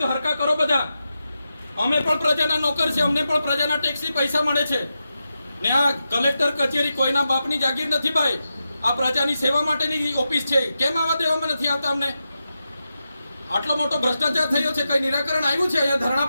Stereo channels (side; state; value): both; inverted; correlation -0.89